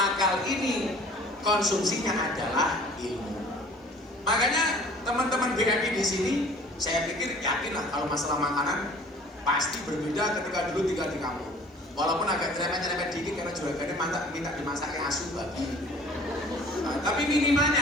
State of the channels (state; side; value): normal; both; correlation 0.49